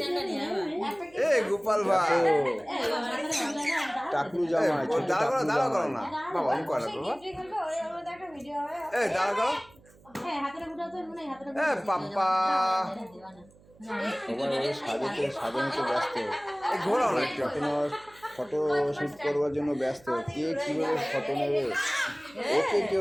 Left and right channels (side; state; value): right; noise; hum, 27 dB below the sound